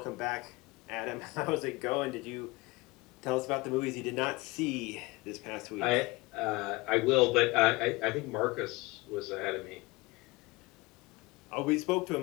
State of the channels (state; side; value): quieter; right; 23.2 dB